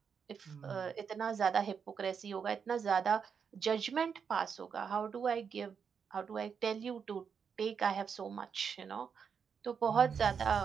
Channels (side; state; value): left; quieter; 6.6 dB